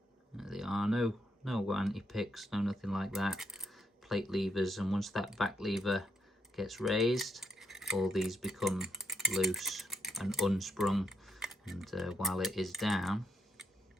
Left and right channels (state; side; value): normal; both; correlation 0.78